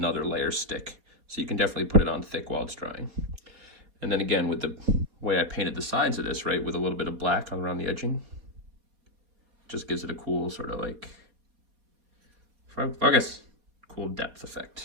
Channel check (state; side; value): late; left; 4.2 ms